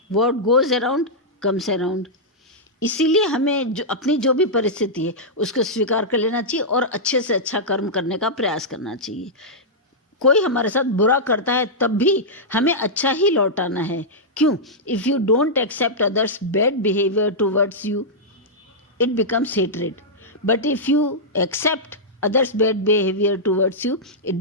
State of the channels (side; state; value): both; normal; correlation -0.09